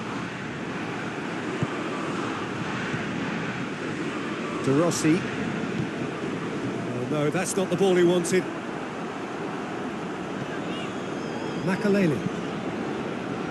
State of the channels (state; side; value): identical; both; correlation 1.00